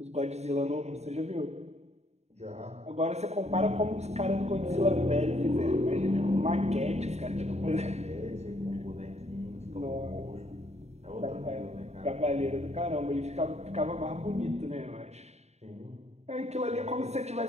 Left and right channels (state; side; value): late; left; 0.32 ms